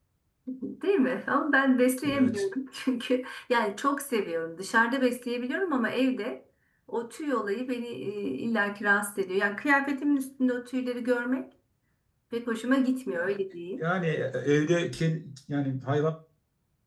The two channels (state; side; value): identical; both; correlation 1.00